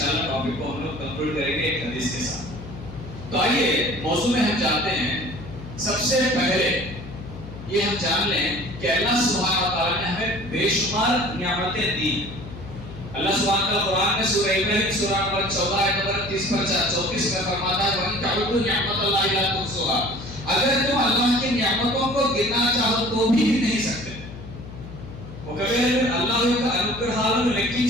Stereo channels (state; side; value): noise; left; hum, 13 dB below the sound